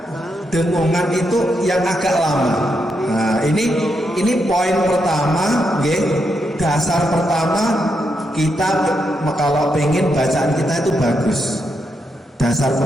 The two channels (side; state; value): both; normal; correlation 0.82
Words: dengungan itu yang agak lama. Nah, ini poin pertama, dasar pertama kita kalau pengen bacaan kita itu bagus. Dasar